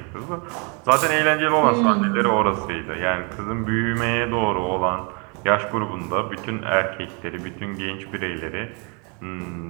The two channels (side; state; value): left; quieter; 34.2 dB